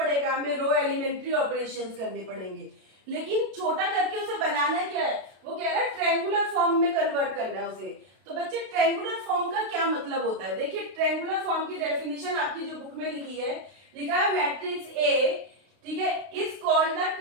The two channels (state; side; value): late; left; 32 ms